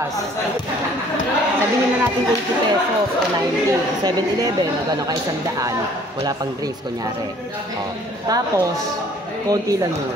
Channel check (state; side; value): normal; both; correlation 0.56